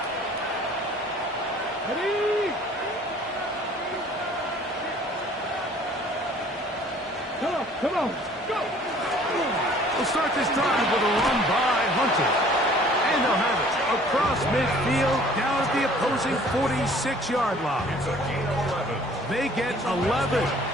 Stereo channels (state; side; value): normal; both; correlation 0.53